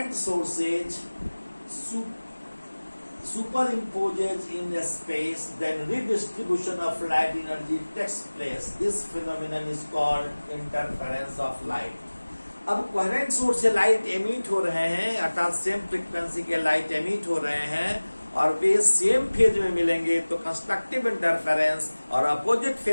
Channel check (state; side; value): inverted; both; correlation -1.00